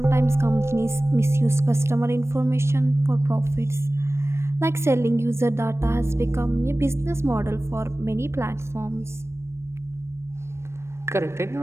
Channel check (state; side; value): late; left; 0.13 ms